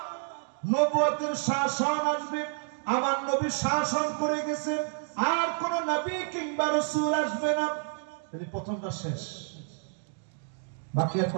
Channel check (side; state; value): left; silent; 56 dB below the other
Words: নবুয়তের শাসন আসবে, আমার নবী শাসন করে গেছেন, আর কোন নবী কিংবা রাসূল আসবে না। তাহলে প্রথমটা শেষ, বাকি আর